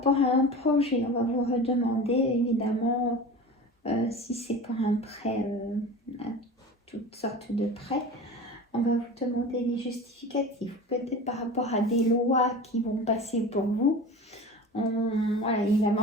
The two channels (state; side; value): normal; both; correlation 0.34